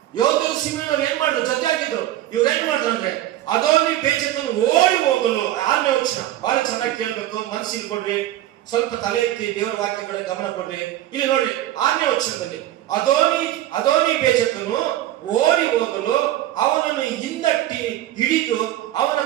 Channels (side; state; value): left; quieter; 13.9 dB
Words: ಯಹೂದ್ಯರು ಸಿಮೆಯೋನರು ಏನ್ ಮಾಡಿದ್ರು? ಜೊತೆ ಆಗಿದ್ರು. ಇವ್ರು ಏನ್ ಮಾಡಿದ್ರು ಅಂದ್ರೆ ಅದೋನಿ ಬೇಜಕನು ಓಡಿ ಹೋಗಲು. 6ನೇ ವಚನ ಬಹಳ ಚೆನ್ನಾಗಿ ಕೇಳ್ಬೇಕು, ಮನಸ್ಸಿಗೆ ಕೊಡ್ರಿ, ಸ್ವಲ್ಪ ತಲೆ ಎತ್ತಿ ದೇವರ ವಾಕ್ಯ ಕಡೆ ಗಮನ ಕೊಡ್ರಿ. ಇಲ್ಲಿ ನೋಡಿ 6ನೇ ವಚನದಲ್ಲಿ ಅದೋನಿ ಬೇಜಕನು ಓಡಿ ಹೋಗಲು ಅವನನ್ನು ಹಿಂದಟ್ಟಿ ಹಿಡಿದು ಅವನ